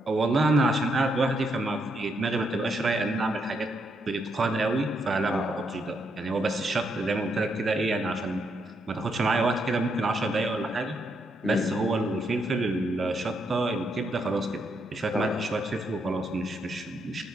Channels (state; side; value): normal; both; correlation 0.78